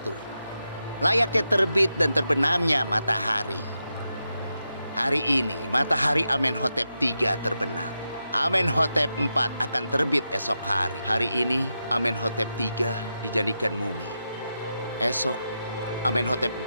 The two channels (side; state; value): both; inverted; correlation -0.88